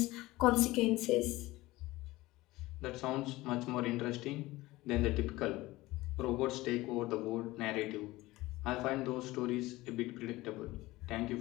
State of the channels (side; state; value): right; quieter; 19.1 dB